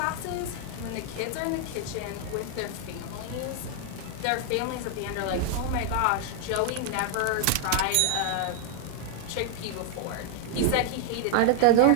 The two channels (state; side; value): different; both; correlation 0.00